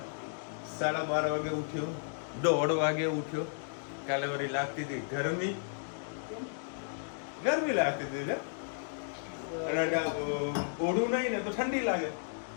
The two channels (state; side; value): silent; right; digital silence